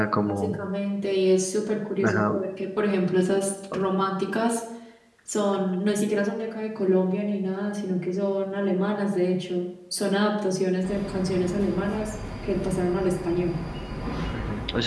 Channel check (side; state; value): both; identical; correlation 1.00